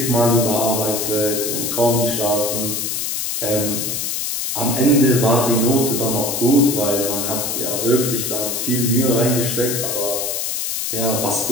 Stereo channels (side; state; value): left; noise; hiss, 2 dB below the sound